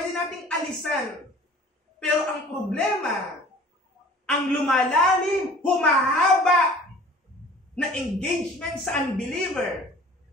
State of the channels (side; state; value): both; normal; correlation 0.47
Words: nating alisan. Pero ang problema, ang lumalalim, humahaba na engagement sa unbeliever,